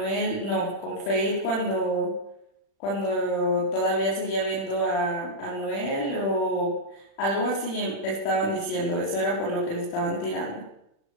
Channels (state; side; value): late; right; 36 ms